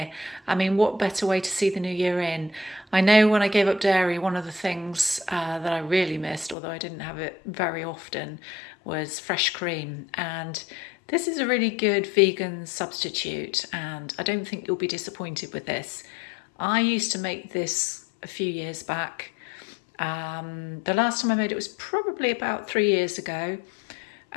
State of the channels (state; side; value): drops out; right; at 6.6 s